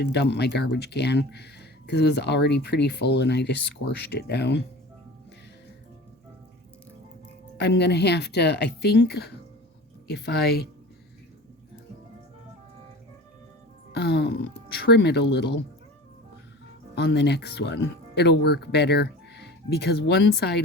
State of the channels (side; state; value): both; normal; correlation 0.36